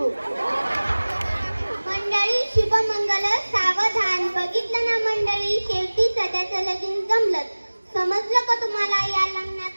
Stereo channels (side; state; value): both; inverted; correlation -1.00